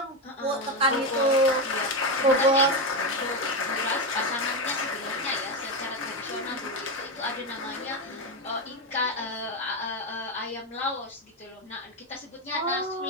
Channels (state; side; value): normal; both; correlation 0.11